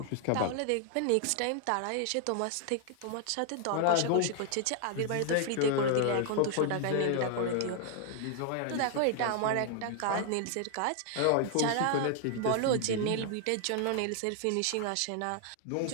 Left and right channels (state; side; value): different; both; correlation 0.00